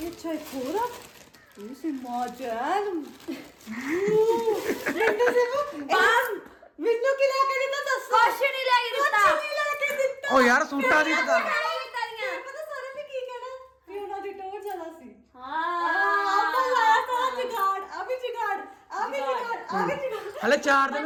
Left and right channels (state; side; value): identical; both; correlation 1.00